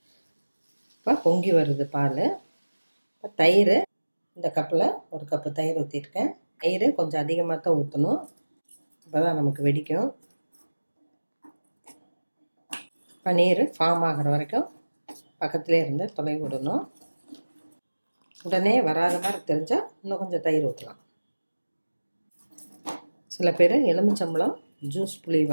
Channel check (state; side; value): inverted; both; correlation -1.00